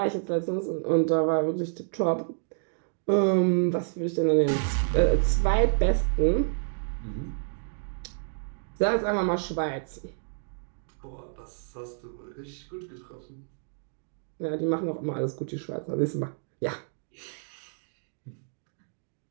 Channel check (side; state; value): left; silent; digital silence